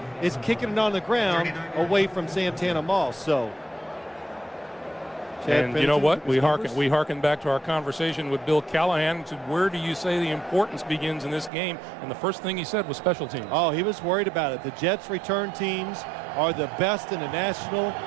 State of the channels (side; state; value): left; drops out; at 11.5 s